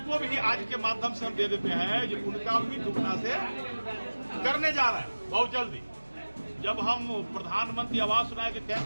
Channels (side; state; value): both; inverted; correlation -1.00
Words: भी आज के माध्यम से हम दे देते हैं जो उनका भी दुगना से करने जा रहे हैं बहुत जल्दी। जब हम प्रधानमंत्री आवास योजना के